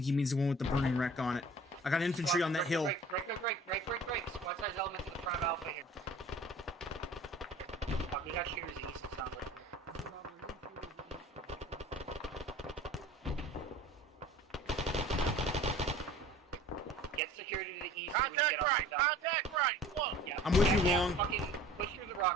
he means the one with the burning wreck on it. I got infantry on that hill. Break. Squad size elements in the front of Alpha here. Fuck, we got shooters east, it sounds like. Get security to the east. Contact right! Contact right! Look! Yeah. I'm with you, Yeah, Long. fucking push through the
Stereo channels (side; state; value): both; normal; correlation 0.45